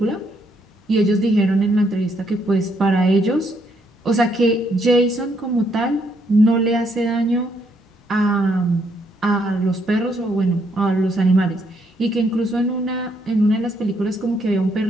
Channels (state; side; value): normal; both; correlation 0.73